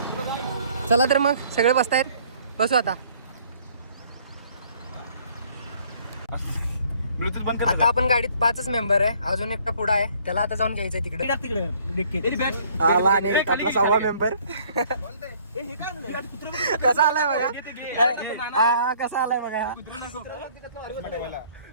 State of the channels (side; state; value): both; inverted; correlation -0.59